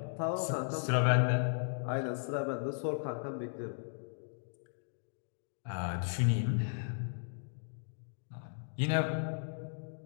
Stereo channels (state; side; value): silent; right; digital silence